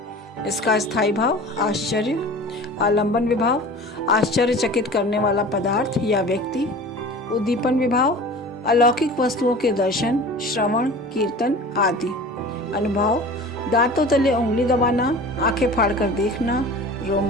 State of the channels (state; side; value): normal; both; correlation 0.39